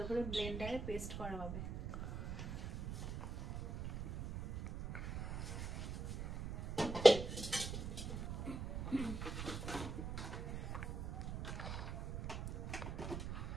করে ব্লেন্ডারে পেস্ট করা হবে।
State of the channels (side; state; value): right; noise; rumble, 4 dB below the sound